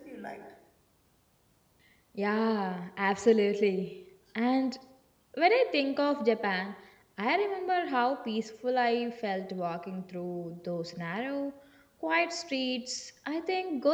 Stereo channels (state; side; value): identical; both; correlation 1.00